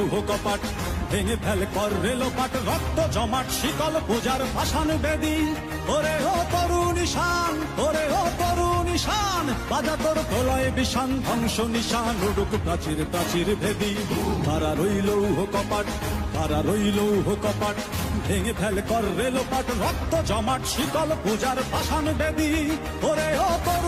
কপাট, ভেঙে ফেল কর রেলোপাট, রক্ত জমাট শিকল পূজার পাষাণ বেদী। ওরে ও তরুণ ঈশান, ওরে ও তরুণ ঈশান, বাজা তোর প্রলয় বিষান, ধ্বংস নিশান উড়ুক প্রাচীর প্রাচীর ভেদী। খাড়া রইল কপাট, খাড়া রইল কপাট, ভেঙে ফেল কর রেলোপাট, রক্ত জমাট শিকল পূজার পাষাণ বেদী। ওরে ও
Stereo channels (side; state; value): both; identical; correlation 1.00